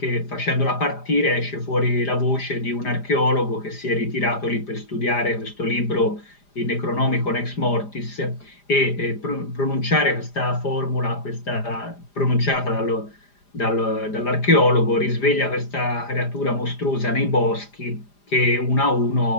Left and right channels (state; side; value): late; right; 4.9 ms